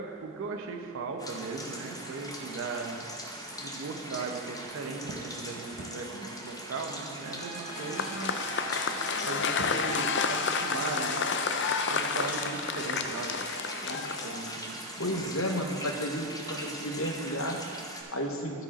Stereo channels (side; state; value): both; normal; correlation 0.03